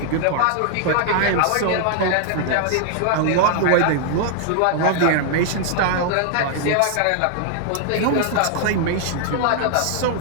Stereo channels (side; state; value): both; different; correlation 0.00